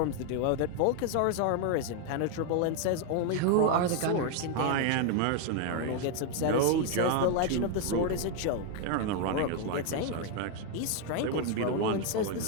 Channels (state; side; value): different; both; correlation 0.01